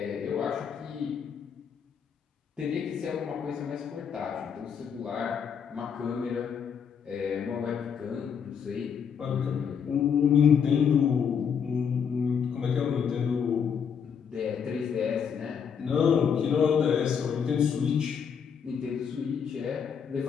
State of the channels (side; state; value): right; quieter; 7.2 dB